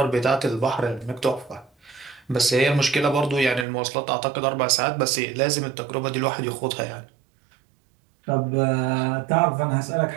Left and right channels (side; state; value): left; drops out; at 3.7 s